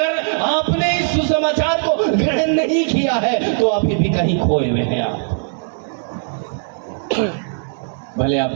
आपने इस सुसमाचार को ग्रहण नहीं किया है तो अभी भी कहीं खोए हुए हैं आप। भले आप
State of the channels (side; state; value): left; silent; digital silence